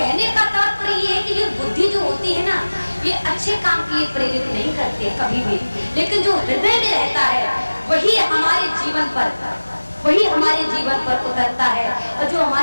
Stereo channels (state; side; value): inverted; both; correlation -1.00